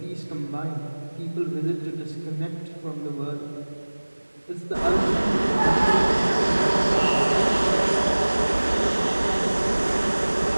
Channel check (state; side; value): inverted; both; correlation -1.00